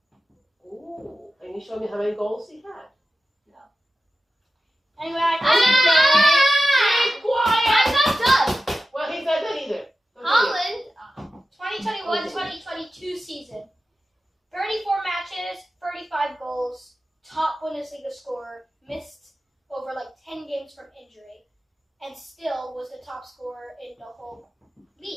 Ooh, can you show me how many goals he had? Anyway, I Be quiet! I'm not done. Well, he's not done either. Continue. Holland, 2021-2022 season. 34 matches, 35 goals, top Bundesliga scorer, missed over like 10 games from injury, and still was the top scorer in the whole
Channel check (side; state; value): both; normal; correlation 0.93